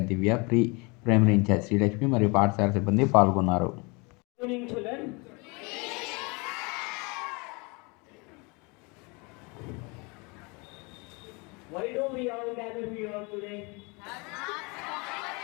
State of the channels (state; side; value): quieter; right; 29.1 dB